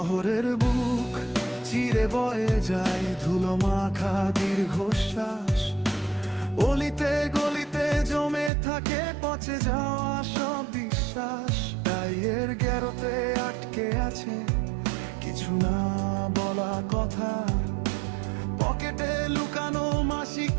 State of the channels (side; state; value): left; drops out; at 8.5 s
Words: বুক চিরে বয়ে যায় ধুলো মাখা দীর্ঘশ্বাস। অলিতে গলিতে জমে থাকে পচে যাওয়া সব বিশ্বাস। গায়ের গেরোতে আটকে আছে কিছু না বলা কথা। পকেটে লুকানো মাসিক